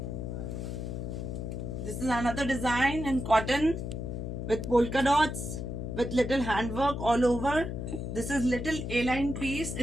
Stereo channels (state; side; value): noise; left; hum, 5 dB below the sound